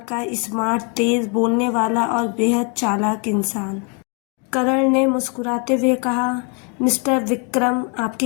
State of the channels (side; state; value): right; quieter; 35.7 dB